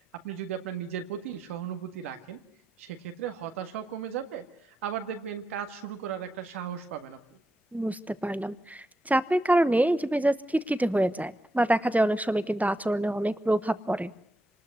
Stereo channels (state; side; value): normal; both; correlation 0.85